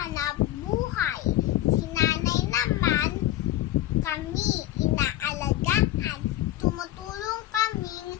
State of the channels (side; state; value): right; quieter; 14.2 dB